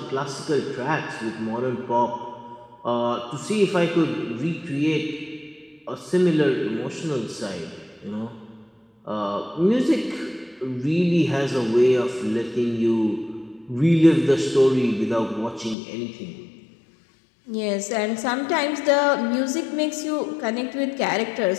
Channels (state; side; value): drops out; right; at 15.8 s